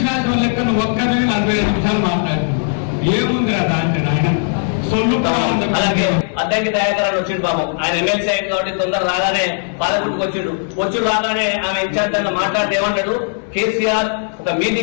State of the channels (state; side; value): silent; right; digital silence